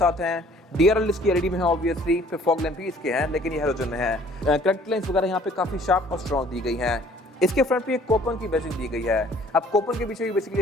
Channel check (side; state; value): both; normal; correlation 0.56